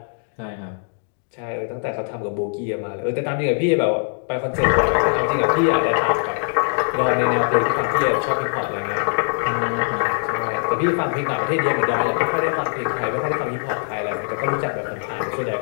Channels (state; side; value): silent; right; 64 dB below the other